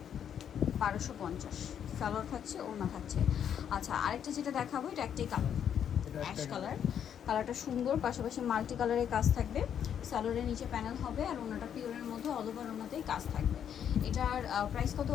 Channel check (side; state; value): right; quieter; 8.9 dB